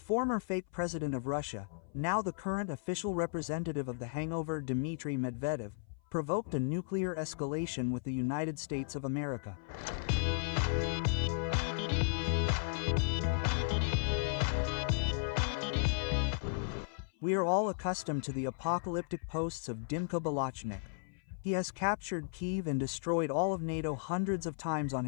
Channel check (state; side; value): silent; right; 54 dB below the other